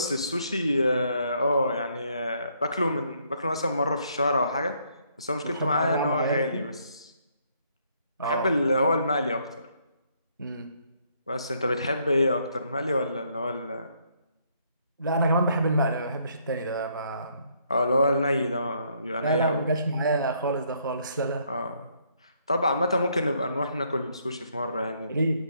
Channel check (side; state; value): both; inverted; correlation -0.70